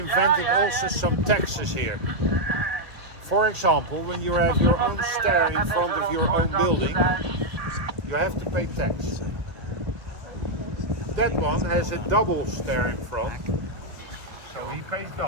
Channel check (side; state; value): left; late; 1.7 ms